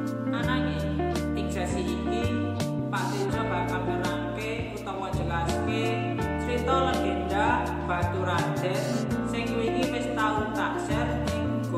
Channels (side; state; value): both; identical; correlation 1.00